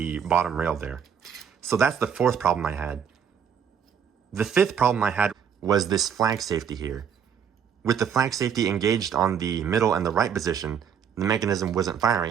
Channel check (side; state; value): left; quieter; 7.7 dB